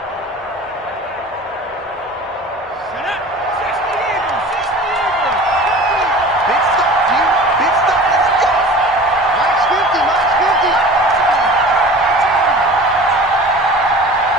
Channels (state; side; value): normal; both; correlation 0.40